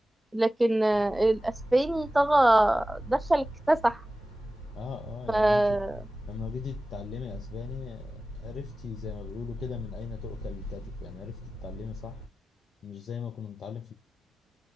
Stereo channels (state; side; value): normal; both; correlation 0.95